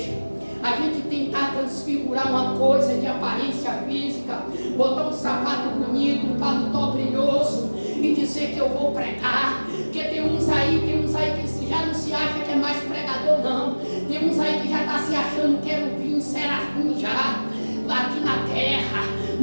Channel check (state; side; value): inverted; both; correlation -1.00